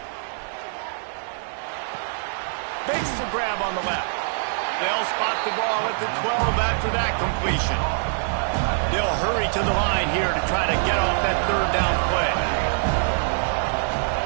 Makes the grab on the left. They'll spot the ball at the 12 after that completion. They'll hurry to the line here to try to get off that third down play.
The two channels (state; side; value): silent; left; 63 dB below the other